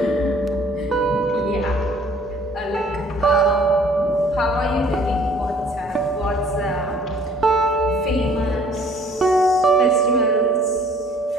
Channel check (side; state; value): both; normal; correlation 0.55